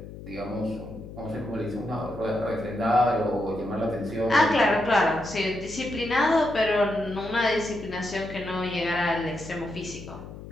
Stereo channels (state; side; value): noise; left; hum, 13 dB below the sound